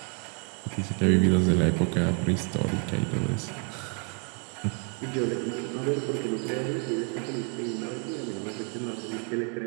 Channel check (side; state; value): left; quieter; 39.3 dB